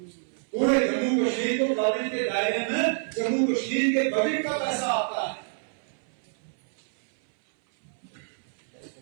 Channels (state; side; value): silent; left; 60 dB below the other